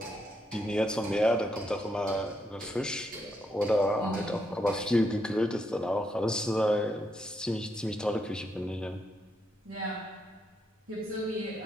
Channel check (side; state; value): both; normal; correlation 0.79